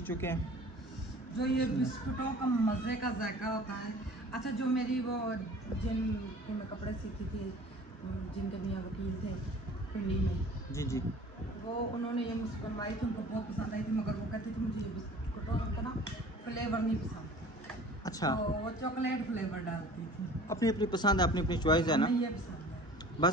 चुके हैं। जो ये बिस्कुटों का मज़े का जायका होता है। अच्छा, जो मेरी वो जिनके मैं कपड़े सीखी थी, जिनके मियाँ वकील थे पिंडी में, जी जी, वो उन्होंने ये मुझसे बनवाई थी, उनको बहुत पसंद आई थी, मगर वो कहती थी मुझे ये बिस्कुटों का ना फ्लेवर नहीं पसंद। अच्छा तो वो चॉकलेट फ्लेवर डालती थी। अपनी अपनी पसंद है, अपनी अपनी चॉइस है ना। हमें ये पसंद है।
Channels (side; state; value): both; normal; correlation 0.46